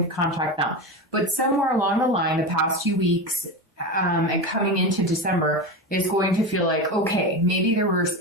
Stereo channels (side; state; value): both; normal; correlation 0.21